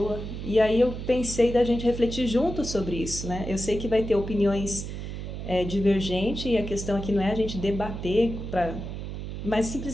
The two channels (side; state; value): right; noise; hum, 7 dB below the sound